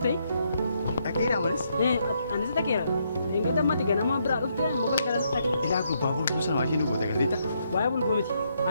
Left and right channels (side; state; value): both; inverted; correlation -0.76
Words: Dhaqeera malis? Anis dhaqeera. Enggak dammati ganama biraa dhufte mokkal kana dhaqe. Ilaa gurbaa bulbul sana waa isheen goota galteetta. Waa'ee bulbul miti.